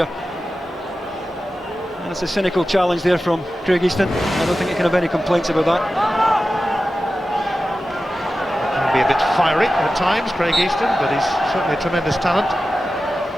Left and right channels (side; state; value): both; normal; correlation 0.94